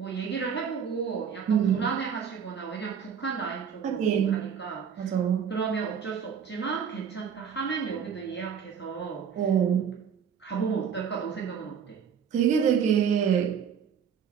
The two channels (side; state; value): left; quieter; 7.4 dB